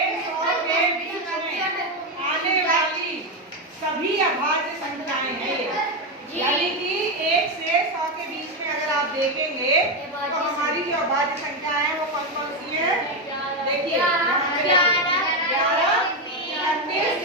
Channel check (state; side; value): normal; both; correlation 0.09